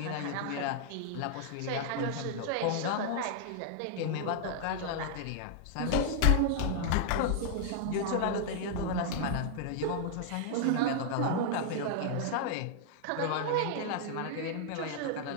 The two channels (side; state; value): both; different; correlation -0.01